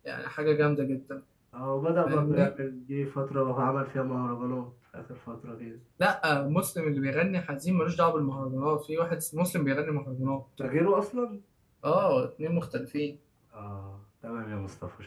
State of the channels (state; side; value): identical; both; correlation 1.00